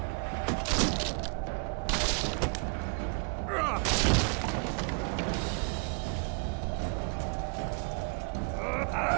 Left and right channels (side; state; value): left; quieter; 37.1 dB